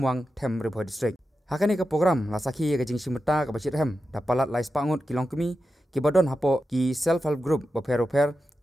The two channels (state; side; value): normal; both; correlation 0.91